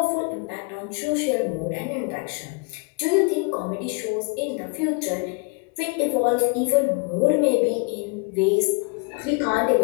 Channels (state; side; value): quieter; right; 33.3 dB